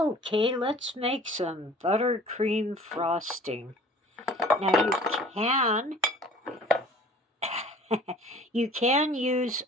let's make some buttercream frosting. Now you can use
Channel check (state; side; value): normal; both; correlation 0.48